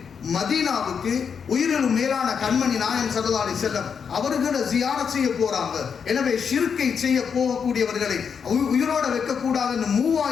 மதீனாவுக்கு உயிரிலும் மேலான கண்மணி நாயகம் ஸல்லல்லாஹு அலைஹி வஸல்லம் அவர்களை ஜியாரத் செய்ய போறாங்க. எனவே ஷிர்கை செய்ய போகக்கூடியவர்களை உயிரோட வைக்கக்கூடாதுன்னு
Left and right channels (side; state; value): right; quieter; 6.6 dB